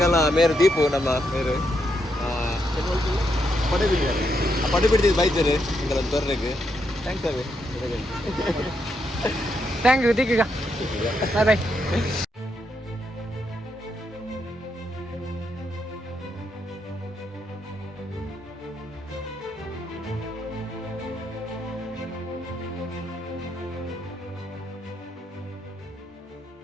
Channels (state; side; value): normal; both; correlation 0.80